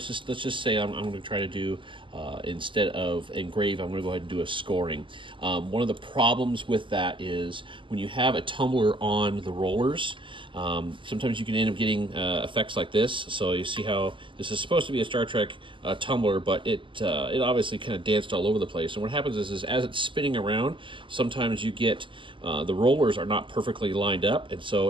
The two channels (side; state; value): left; late; 0.24 ms